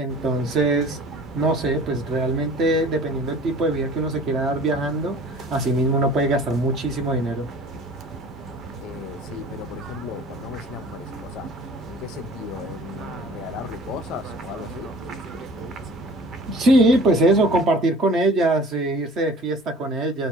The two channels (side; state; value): both; normal; correlation 0.46